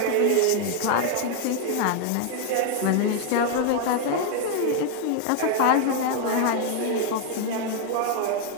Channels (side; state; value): both; different; correlation 0.01